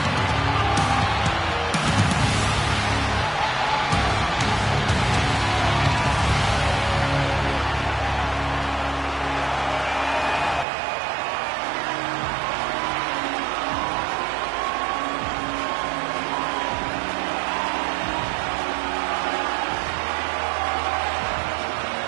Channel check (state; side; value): drops out; left; at 10.7 s